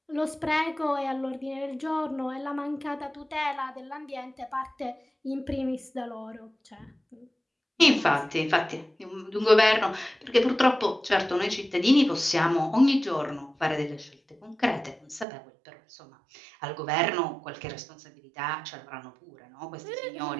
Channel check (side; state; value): left; drops out; at 15.2 s